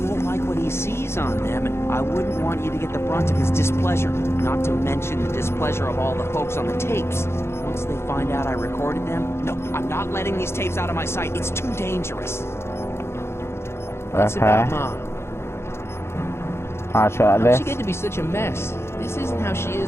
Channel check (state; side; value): late; right; 0.12 ms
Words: won't like what he sees on them, and I wouldn't want you to get the brunt of his displeasure, not to mention the displeasure of all the folks on the tapes. Once they find out I recorded them, no, I'm not letting these tapes out of my sight. It's too dangerous. What's about Mom? I'll try How'd this. she get to be such a mess? This isn't how she